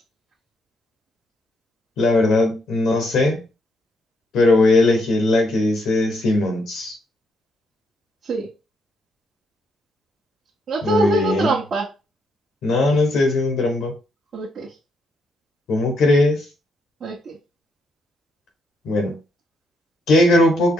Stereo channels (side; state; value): both; normal; correlation 0.76